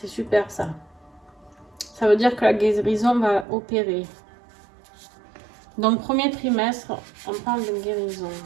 super ça. Ça veut dire que la guérison va opérer. Donc, premier trimestre, on parle de guérison.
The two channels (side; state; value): left; drops out; at 3.5 s